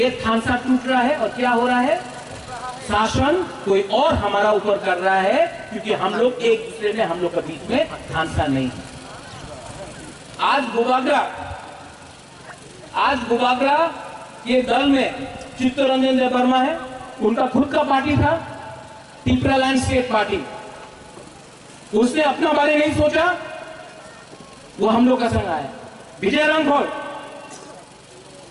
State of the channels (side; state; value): both; identical; correlation 1.00